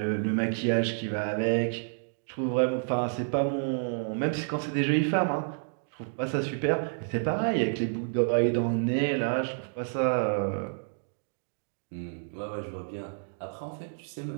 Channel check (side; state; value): left; silent; digital silence